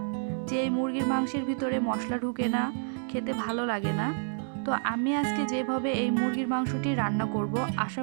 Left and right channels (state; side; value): silent; left; digital silence